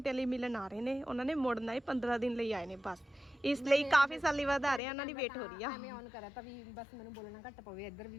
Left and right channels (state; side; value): drops out; right; at 4.8 s